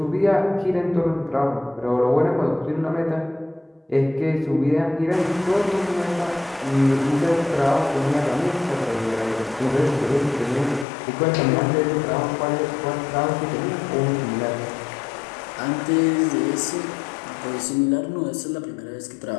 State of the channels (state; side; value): drops out; right; at 10.9 s